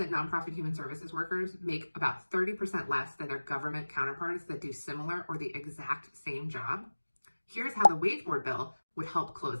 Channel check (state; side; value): inverted; both; correlation -1.00